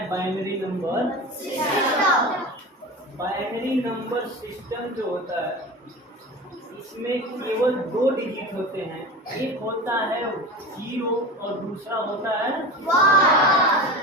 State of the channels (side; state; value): both; normal; correlation 0.30